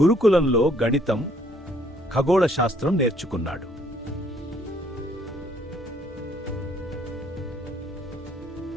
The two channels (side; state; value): both; normal; correlation 0.64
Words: గురుకులంలో గణితం, ఖగోళ శాస్త్రం నేర్చుకున్నాడు.